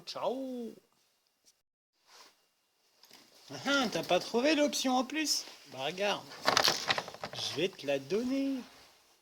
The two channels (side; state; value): both; identical; correlation 1.00